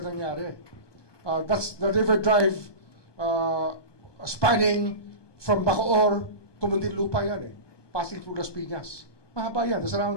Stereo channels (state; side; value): late; right; 1.2 ms